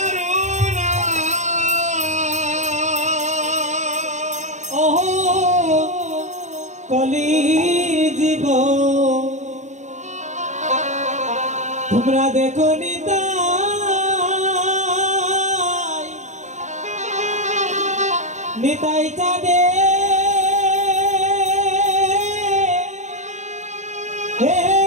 ওহ কলি জীব তোমরা দেখো নিতাই চাঁদে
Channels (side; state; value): left; late; 0.34 ms